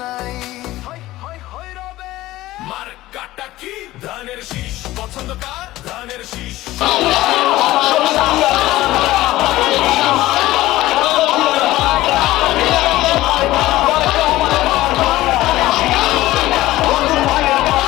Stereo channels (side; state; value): right; quieter; 16.7 dB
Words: নাই। মার্কাটা কি? ধানের শীষ। পছন্দ কার? ধানের শীষ।